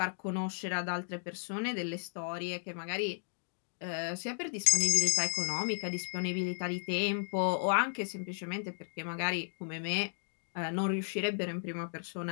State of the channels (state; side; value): silent; right; digital silence